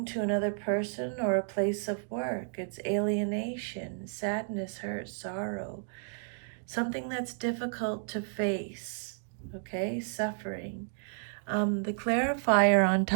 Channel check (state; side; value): silent; left; digital silence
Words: to another person or a place of work. It's alienation, sadness, hurt, sorrow, something that's difficult to face, okay, suffering. The clarifier on